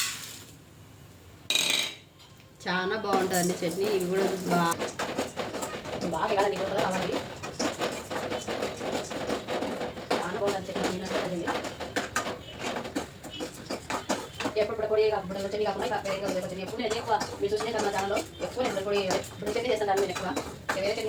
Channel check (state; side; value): identical; both; correlation 1.00